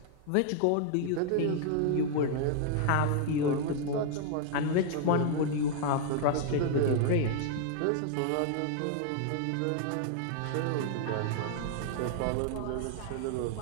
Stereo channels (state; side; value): different; both; correlation 0.00